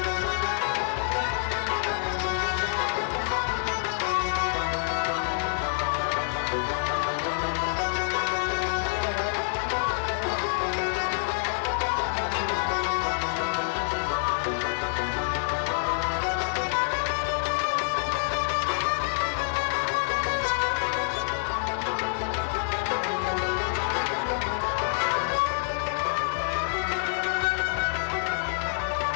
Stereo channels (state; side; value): silent; right; 59 dB below the other